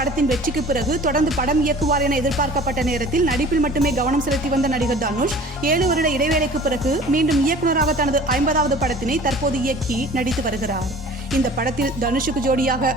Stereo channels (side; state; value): both; normal; correlation 0.45